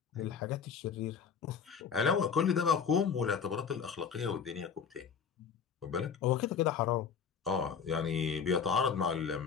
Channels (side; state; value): right; quieter; 6.7 dB